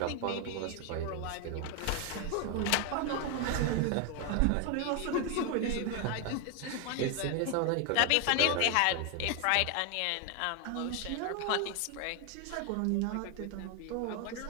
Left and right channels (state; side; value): different; both; correlation 0.01